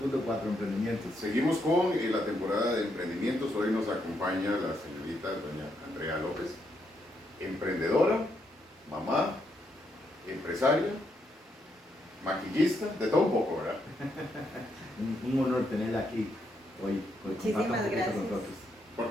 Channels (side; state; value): both; normal; correlation 0.78